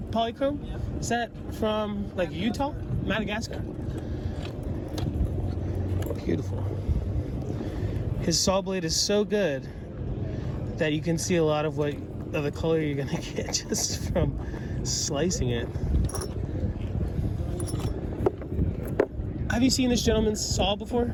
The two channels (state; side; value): identical; both; correlation 1.00